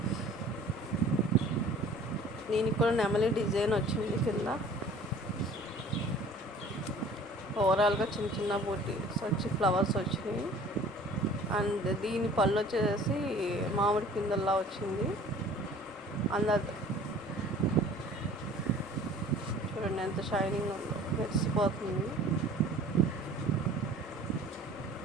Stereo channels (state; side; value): normal; both; correlation 0.48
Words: దీనికి కూడా నెమలి డిజైన్ వచ్చింది కింద. ఓవరాల్గా చిన్న చిన్న బూటీస్ వచ్చి ఫ్లవర్స్ వచ్చినాయి. అండ్ దీని పళ్ళు వచ్చేసి మామిడి పిందల్లా వచ్చింది. అందరు చూడండి ఎంత షైనింగ్ ఉందో, మెరిసిపోతుంది.